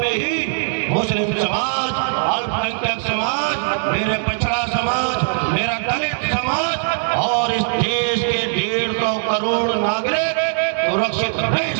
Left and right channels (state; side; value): silent; left; 66 dB below the other